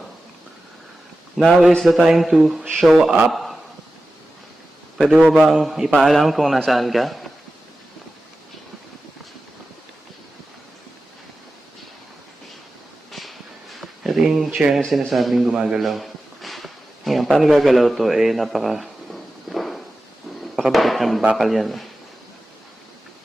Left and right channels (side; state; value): both; normal; correlation 0.94